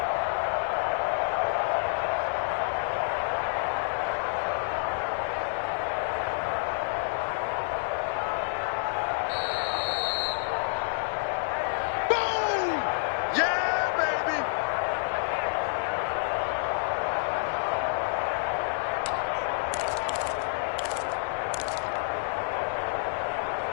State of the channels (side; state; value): right; silent; digital silence